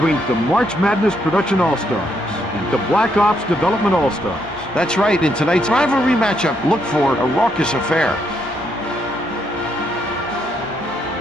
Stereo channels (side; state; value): both; normal; correlation 0.75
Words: the March Madness Production All-Stars and the Black Ops Development All-Stars. That's right, in tonight's rivalry matchup, look for a raucous affair.